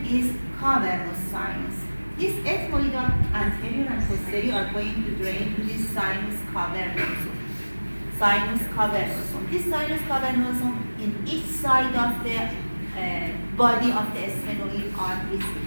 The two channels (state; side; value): inverted; both; correlation -1.00